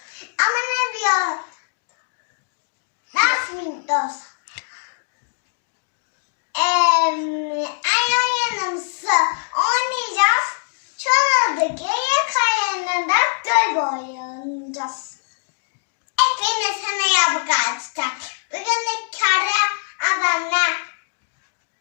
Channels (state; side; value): silent; right; 64 dB below the other